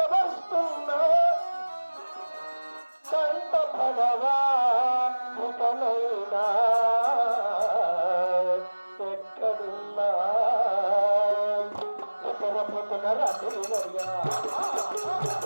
వస్తున్నా కంట పడవా ముఖనైనా ఎక్కడున్నా ఎక్కడపోతున్న రాత్రి నడిగా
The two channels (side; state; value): both; inverted; correlation -1.00